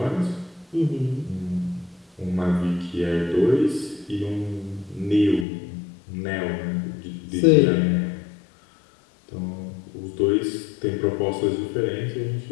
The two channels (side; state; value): right; drops out; at 5.5 s